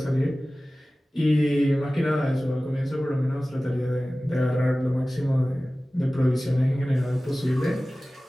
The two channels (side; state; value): both; normal; correlation 0.97